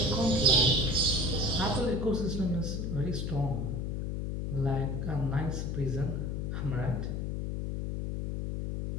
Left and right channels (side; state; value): left; noise; hum, 2 dB below the sound